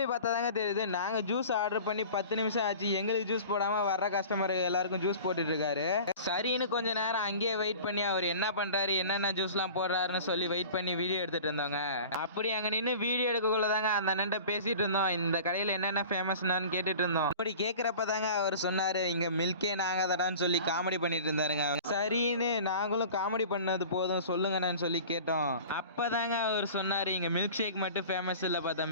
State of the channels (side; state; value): both; inverted; correlation -0.41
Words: பார்த்தா தாங்க தெரியுது, நாங்கள் ஜூஸ் ஆர்டர் பண்ணி 10 நிமிஷம் ஆச்சு, எங்களுக்கு ஜூஸ் போடாமல் வர்ற கஸ்டமர் எல்லாருக்கும் ஜூஸ் போட்டுட்டு இருக்காரு. சரின்னு கொஞ்சம் நேரம் அங்கேயே வெயிட் பண்ணி அவர் என்ன பண்ணுறாரு, என்னென்ன ஜூஸ்லாம் போடுறாருன்னு சொல்லி வெயிட் பண்ணி வீடியோ எடுத்துகிட்டு இருந்தோங்க. அப்படி அங்கே நின்று வீடியோ எடுக்கக்குள்ள தாங்க அந்த அண்ணன்ட்ட பேசிகிட்டு இருந்தோம், இந்த கடையில் என்னென்ன ஃபேமஸ்னான்னு கேட்டுட்டு இருந்தோம். அப்படி கேட்குறப்ப தாங்க அவர் சொன்னாரு, இங்க மில்கே நாங்க தடான்னு சொல்லி காமெடி பண்ணிட்டு இருந்தாருங்க. சரின்னு நாங்களும் காமெடி பண்ணது போதும் சொல்லுங்கன்னு சொல்லி கேட்டோம். அப்பதாங்க அவர் சொன்னாரு, இங்க மில்க் ஷேக் மட்டும் ஃபேமஸ் இல்லப்பா